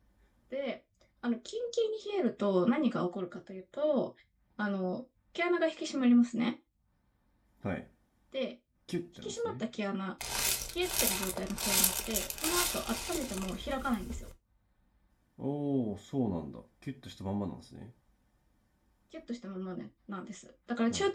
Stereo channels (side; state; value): both; identical; correlation 1.00